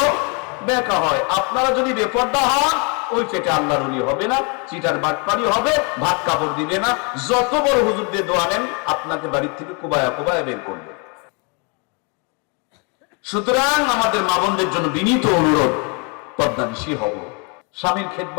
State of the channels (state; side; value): quieter; right; 34.2 dB